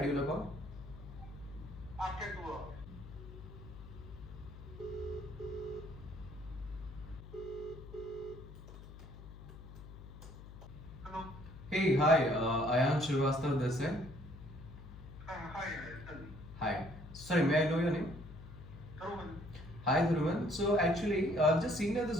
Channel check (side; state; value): left; noise; hum, 14 dB below the sound